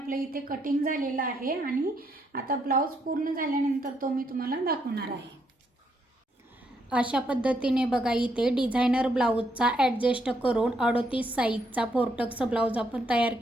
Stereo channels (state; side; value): normal; both; correlation 0.75